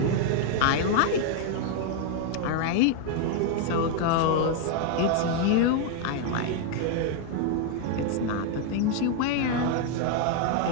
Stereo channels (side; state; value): both; different; correlation 0.00